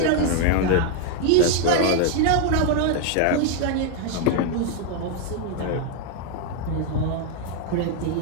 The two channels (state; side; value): different; both; correlation 0.01